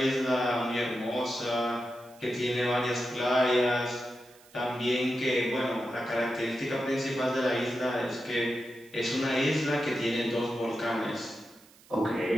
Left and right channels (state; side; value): noise; right; hiss, 26 dB below the sound